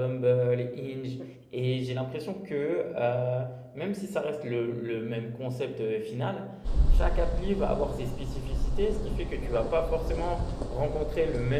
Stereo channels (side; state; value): both; identical; correlation 1.00